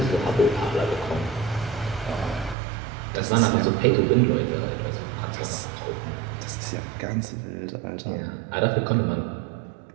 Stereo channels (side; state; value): left; drops out; at 2.6 s